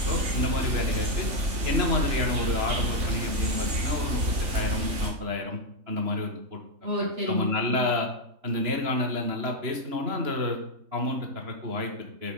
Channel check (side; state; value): left; late; 3.0 ms